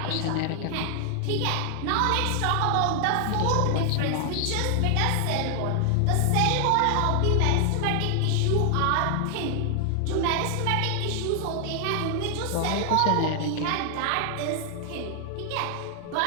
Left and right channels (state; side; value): different; both; correlation 0.00